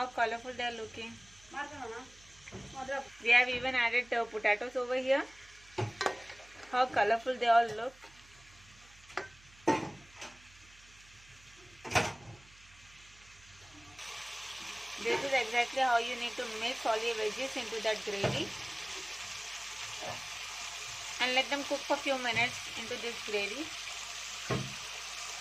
colorful they are looking. We have even added potatoes over here. How colorful they all look. This is exactly how you need to mix all your veggies into that gravy. And let them cook for a few minutes into this gravy.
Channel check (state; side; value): noise; right; hum, 24 dB below the sound